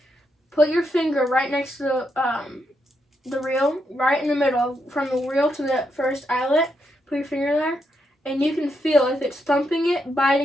put your finger right next to the reel, right in the middle, from the reel to the first eyelet. Put your finger there, and you can feel if it's thumping it,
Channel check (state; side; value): normal; both; correlation 0.81